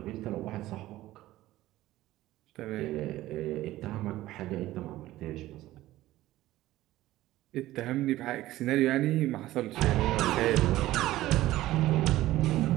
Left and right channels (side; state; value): left; quieter; 15.9 dB